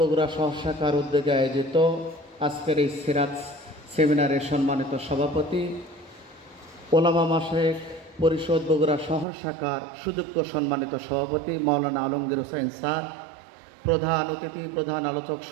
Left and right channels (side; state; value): left; drops out; at 9.2 s